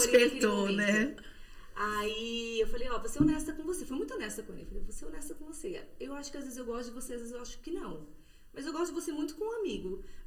né? Aí eu falei, vou ser honesta com você. Fui muito honesta com ele. Eu falei, vou ser honesta com você. Eu acho que às vezes eu gosto de você, às vezes eu acho que não. Mas eu gosto de você muito com um amigo.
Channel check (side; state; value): both; identical; correlation 1.00